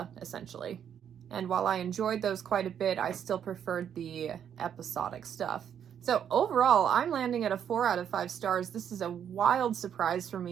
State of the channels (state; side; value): quieter; left; 8.8 dB